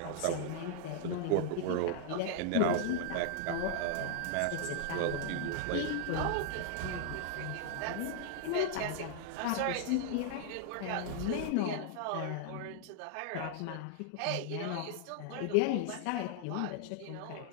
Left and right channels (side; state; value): both; different; correlation -0.01